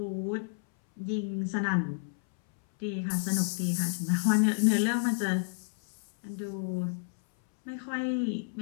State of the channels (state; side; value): silent; right; 58 dB below the other